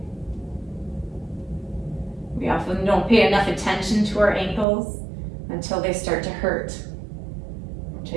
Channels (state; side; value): drops out; left; at 4.7 s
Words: We often don't pay enough attention to our ankles until they start to hurt,